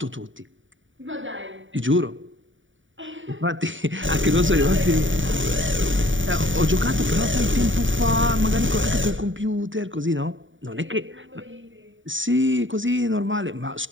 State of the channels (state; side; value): late; left; 0.56 ms